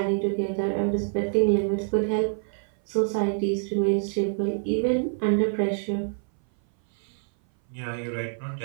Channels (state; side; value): silent; left; 59 dB below the other